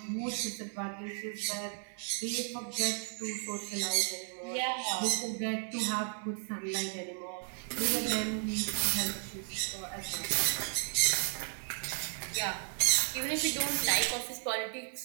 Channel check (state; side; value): silent; left; 55 dB below the other